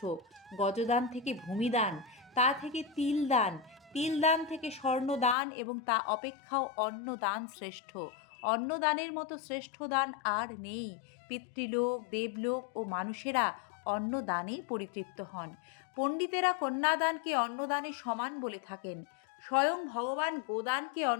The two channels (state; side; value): drops out; right; at 5.4 s